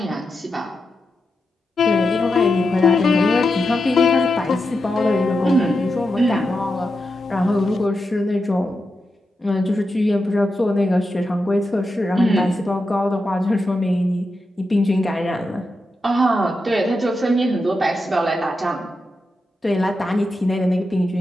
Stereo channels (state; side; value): normal; both; correlation 0.88